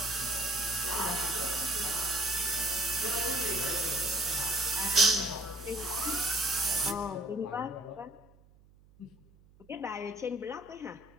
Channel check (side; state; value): right; noise; hum, 27 dB below the sound